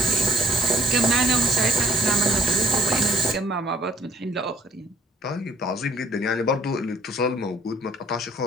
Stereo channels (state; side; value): normal; both; correlation 0.55